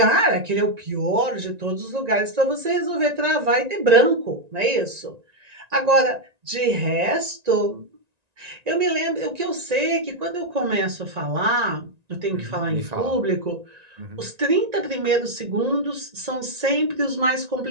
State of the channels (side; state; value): left; late; 1.9 ms